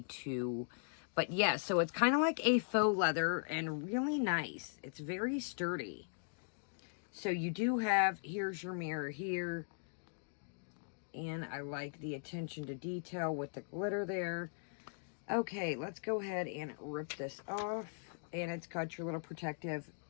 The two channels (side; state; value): right; silent; digital silence